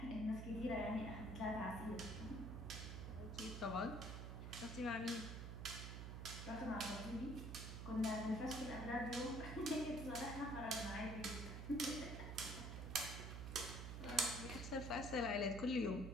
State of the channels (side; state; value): right; noise; hum, 6 dB below the sound